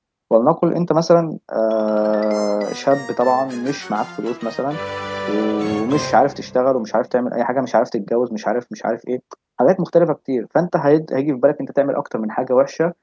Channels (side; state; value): both; identical; correlation 1.00